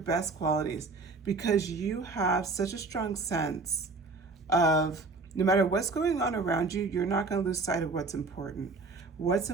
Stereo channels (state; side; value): quieter; left; 3.8 dB